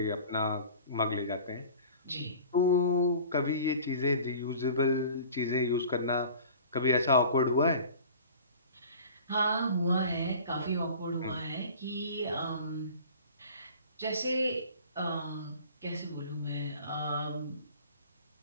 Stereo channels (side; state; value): both; inverted; correlation -0.44